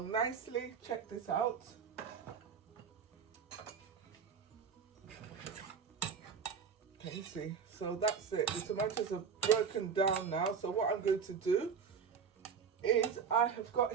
nicely. Check this out. Can you see? So that's it. The tomatoes are broken down now. So what I'm going to do is I have got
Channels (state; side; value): quieter; left; 6.5 dB